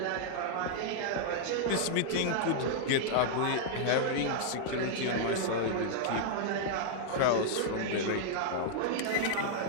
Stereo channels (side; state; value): both; different; correlation -0.01